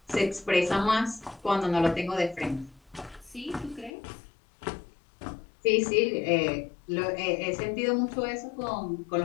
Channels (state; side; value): drops out; right; at 3.9 s